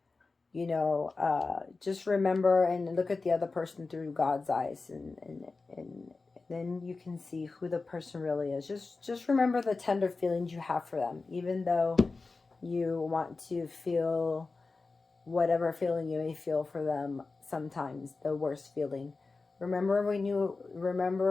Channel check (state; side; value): quieter; right; 3.9 dB